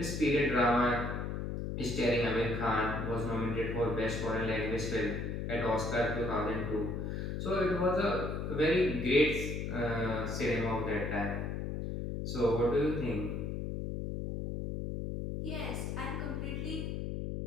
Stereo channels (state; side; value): noise; left; hum, 3 dB below the sound